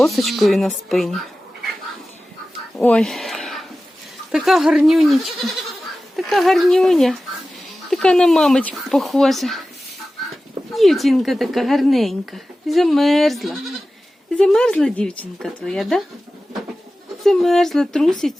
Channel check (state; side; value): normal; both; correlation 0.95